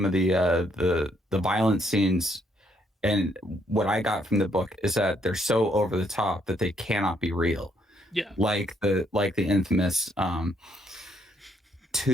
of the violent scenes. And what I got from the book is that they're so over the top that they cannot be real. Yeah. Like the infamous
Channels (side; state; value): both; normal; correlation 0.71